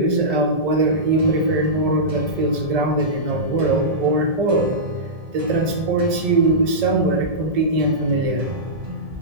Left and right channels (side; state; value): left; late; 1.7 ms